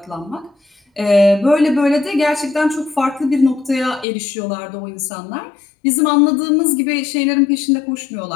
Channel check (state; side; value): drops out; right; at 4.0 s